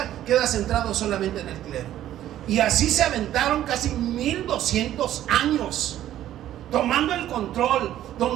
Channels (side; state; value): left; quieter; 12.5 dB